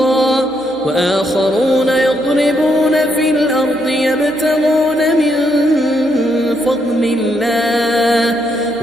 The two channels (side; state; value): right; noise; hum, 27 dB below the sound